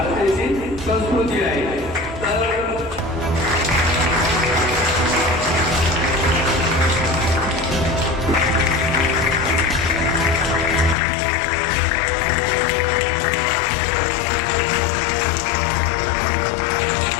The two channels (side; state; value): right; drops out; at 11.0 s